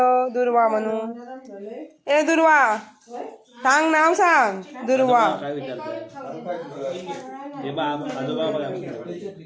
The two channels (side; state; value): both; identical; correlation 1.00